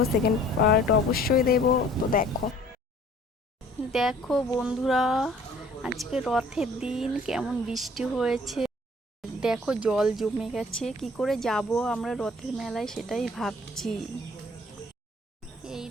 সেকেন্ড পার্ট অবশ্যই দেবো। তো দেখো দেখো বন্ধুরা, আজকে রথের দিন কেমন বৃষ্টি হয়েছে। দেখো জল জমে গেছে, কি করে যাব আমরা রথের মেলায় সেটাই ভাবছি। এই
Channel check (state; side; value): normal; both; correlation 0.53